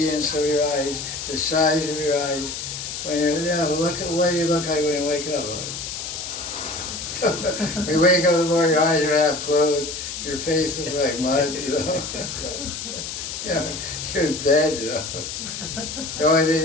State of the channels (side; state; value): left; noise; hiss, 7 dB below the sound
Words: of your eyes, the size of your eyes. When look at what you look like when you wake up. When you wake up in the morning, your eyes are half closed, your face looks like mud, you're dead, The only thing